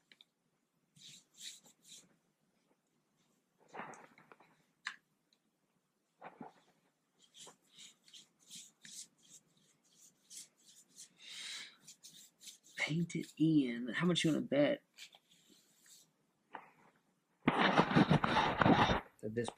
Paint it in. How much you want to bet that this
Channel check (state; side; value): identical; both; correlation 1.00